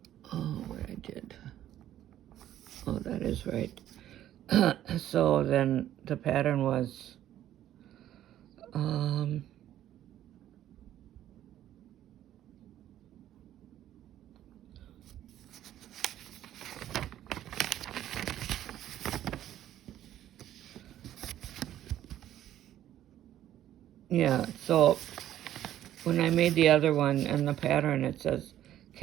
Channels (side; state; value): left; quieter; 12.2 dB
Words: Oh, what I did. Oh, that is right. So then the pattern was yeah, so when I made the other one and the pattern, it says